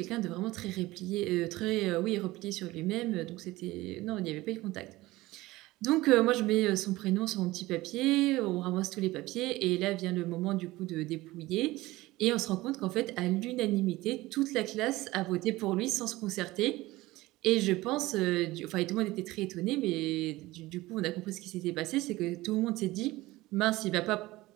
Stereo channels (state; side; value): quieter; left; 18.9 dB